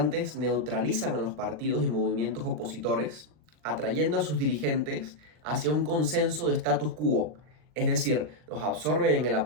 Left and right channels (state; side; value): late; left; 40 ms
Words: neutralizan a los partidos y movimientos opositores, atrayendo a sus dirigentes hacia un consenso de status quo, es decir, los absorben en el